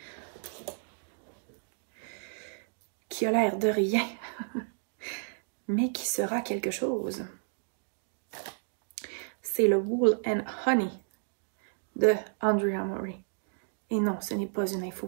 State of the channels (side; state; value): left; silent; 57 dB below the other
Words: Qui a l'air de rien. Mais qui sera quelque chose. C'est le Wool and Honey de Andrea Mori. Et non, ce n'est pas une info